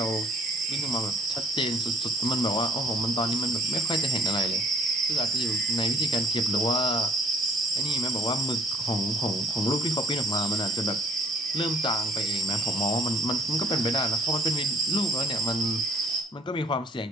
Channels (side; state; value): both; normal; correlation 0.54